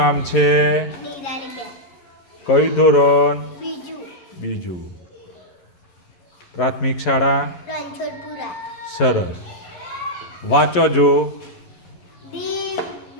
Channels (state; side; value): late; right; 11 ms